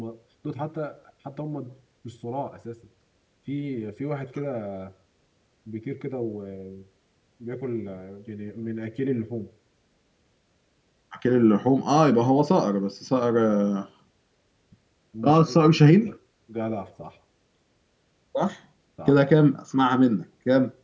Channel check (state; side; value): identical; both; correlation 1.00